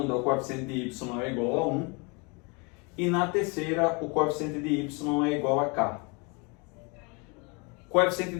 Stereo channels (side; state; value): right; quieter; 30.9 dB